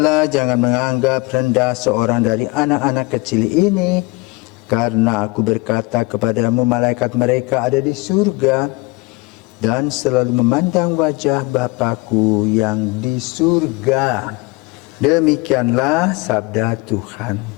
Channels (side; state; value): right; quieter; 24.6 dB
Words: jangan menganggap rendah seorang dari anak-anak kecil ini, karena aku berkata kepadamu, malaikat mereka ada di surga dan selalu memandang wajah Bapa-Ku yang di surga." Demikianlah sabda Tuhan.